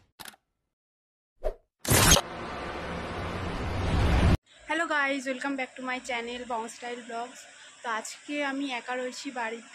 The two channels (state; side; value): identical; both; correlation 1.00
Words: hello guys, welcome back to my channel Bong Style Blogs. তো আজকে আমি একা রয়েছি